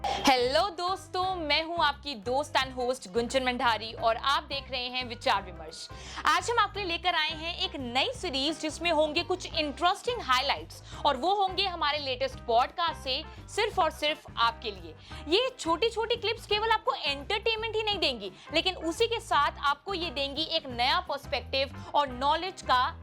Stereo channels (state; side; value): identical; both; correlation 1.00